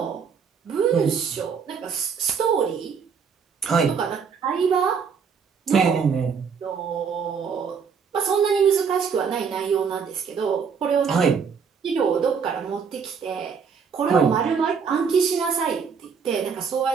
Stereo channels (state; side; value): quieter; left; 6.2 dB